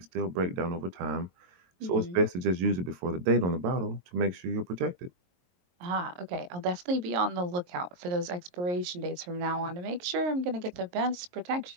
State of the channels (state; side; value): late; left; 22 ms